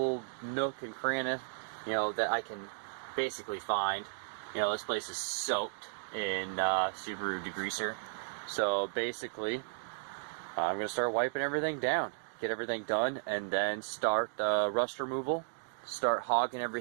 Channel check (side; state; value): left; silent; digital silence